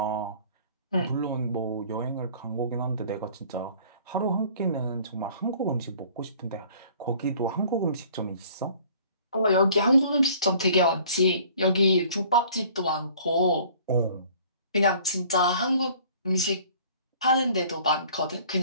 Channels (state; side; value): inverted; both; correlation -0.53